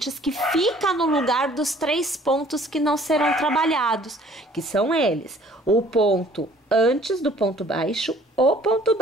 que fica no lugar dos 3 pontos que não serão trabalhados, que são eles: o ponto antes do ponto baixo, o ponto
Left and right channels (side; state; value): both; normal; correlation 0.56